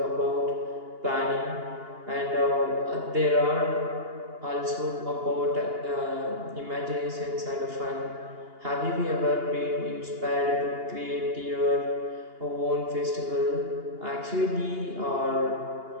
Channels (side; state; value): left; late; 2.8 ms